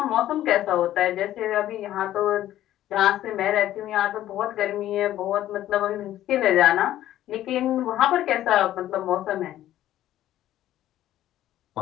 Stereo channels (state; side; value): quieter; right; 13.2 dB